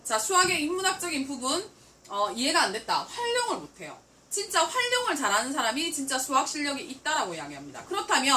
자, 수학의 인문학적인 부분 이해가 안 됐다. 활용을 못해요. 진짜 활용을 잘하는 사람이 진짜 수학 실력이 있다라고 이야기합니다.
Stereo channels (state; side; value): identical; both; correlation 1.00